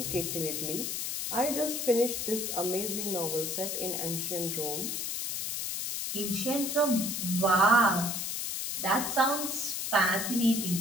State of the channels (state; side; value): noise; left; hiss, 3 dB below the sound